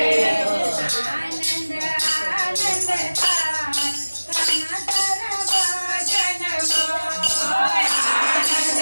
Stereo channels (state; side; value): inverted; both; correlation -1.00